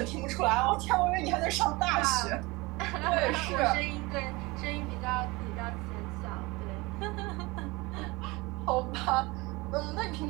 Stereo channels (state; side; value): quieter; left; 23.5 dB